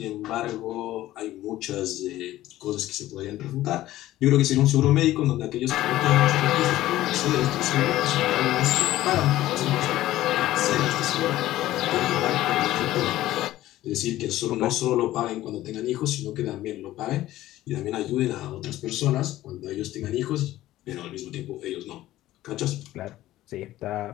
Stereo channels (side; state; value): right; quieter; 15.1 dB